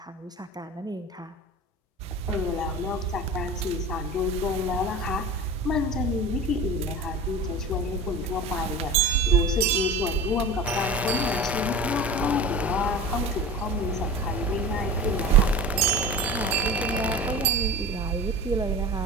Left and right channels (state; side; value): normal; both; correlation 0.33